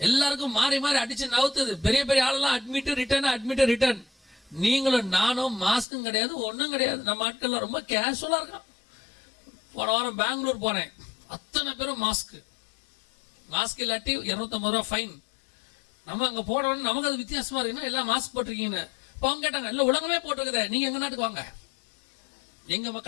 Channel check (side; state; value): right; drops out; at 5.9 s